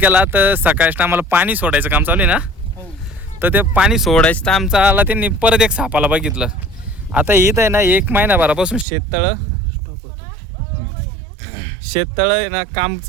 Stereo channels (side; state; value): left; drops out; at 8.8 s